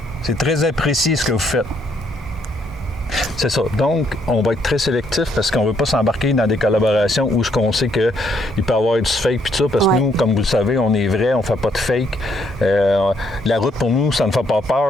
C'est très apprécié ce que vous faites. C'est ça. Donc, on va être très sélectif parce qu'on ne veut pas s'embarquer dans des collaborations où ce qu'on sait qu'il peut y avoir du fake puis tout ça, parce que nous, comme vous le savez, on est vrai, on ne fait pas de fake. La route, pour nous, ça ne fait pas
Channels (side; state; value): both; normal; correlation 0.71